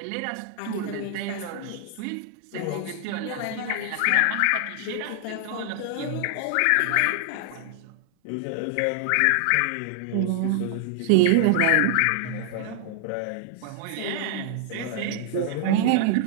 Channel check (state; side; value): different; both; correlation 0.00